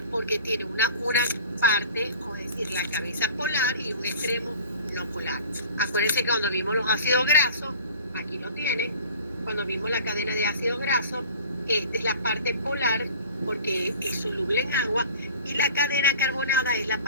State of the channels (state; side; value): inverted; both; correlation -0.44